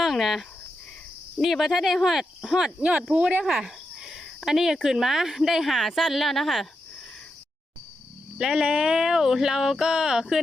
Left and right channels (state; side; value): normal; both; correlation 0.86